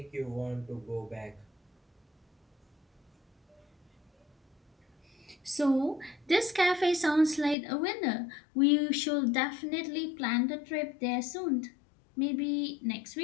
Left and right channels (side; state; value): right; drops out; at 7.6 s